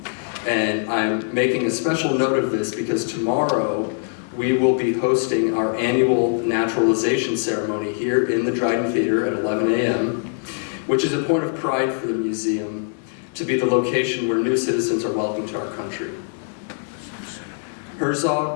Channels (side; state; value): right; silent; digital silence